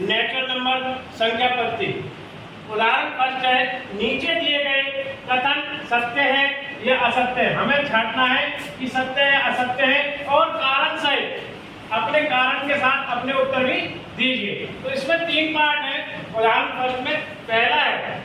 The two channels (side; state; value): both; identical; correlation 1.00